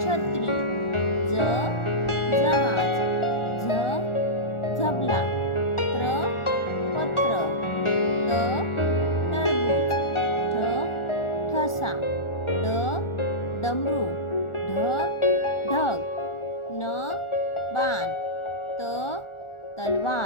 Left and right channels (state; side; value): late; right; 1.4 ms